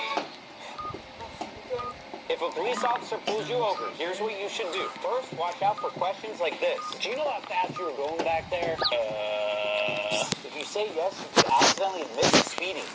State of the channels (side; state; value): both; identical; correlation 1.00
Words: If a police officer pulls you over, here's what you should do. First, watch out for questions like this. Do you know how fast you were going back there? If you say yes, you could accidentally admit to speeding.